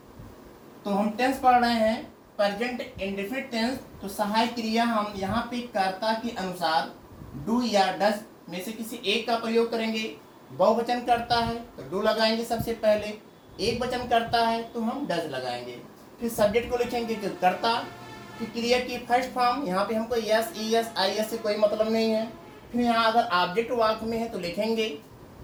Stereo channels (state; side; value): identical; both; correlation 1.00